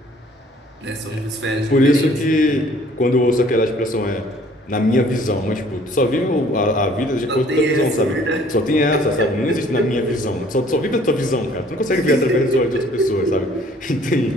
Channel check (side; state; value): both; normal; correlation 0.56